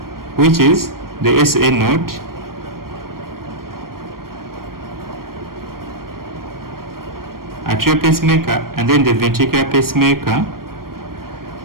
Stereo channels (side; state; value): left; late; 0.93 ms